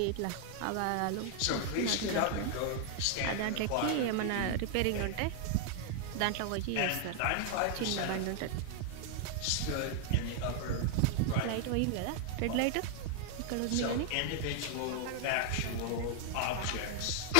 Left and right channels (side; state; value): both; different; correlation 0.00